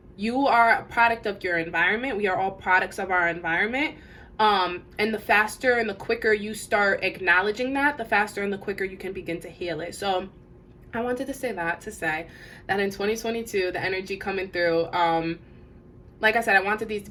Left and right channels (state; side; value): identical; both; correlation 1.00